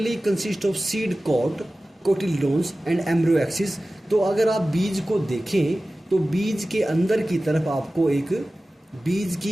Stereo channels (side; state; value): both; normal; correlation 0.96